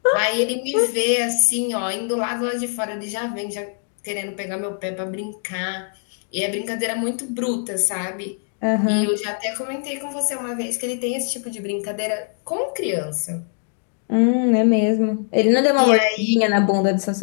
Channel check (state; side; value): silent; right; 56 dB below the other